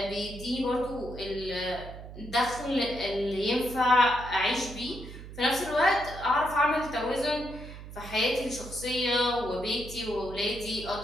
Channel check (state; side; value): noise; right; hum, 13 dB below the sound